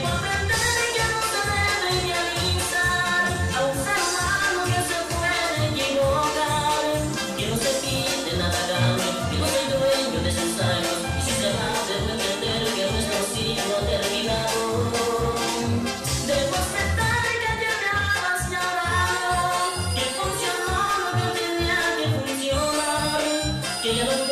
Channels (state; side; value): identical; both; correlation 1.00